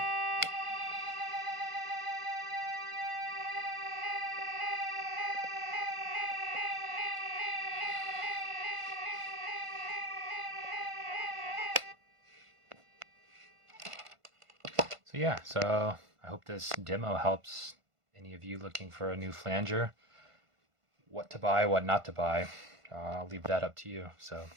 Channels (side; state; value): left; late; 1.5 ms